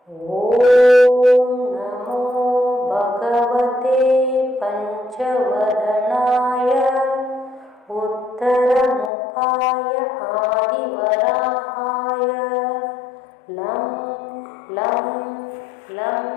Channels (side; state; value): right; drops out; at 9.1 s